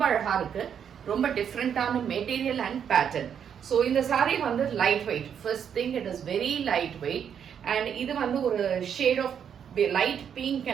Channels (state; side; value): quieter; left; 8.1 dB